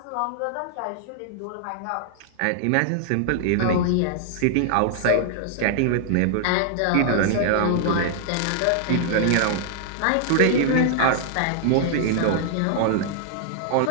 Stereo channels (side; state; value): both; different; correlation -0.01